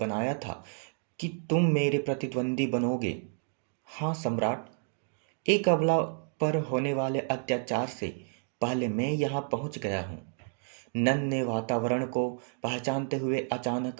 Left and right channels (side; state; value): left; silent; 56 dB below the other